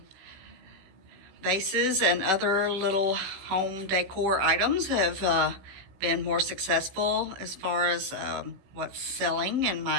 Vases and other little home decor items have been more successful as far as what's selling in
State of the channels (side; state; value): left; late; 16 ms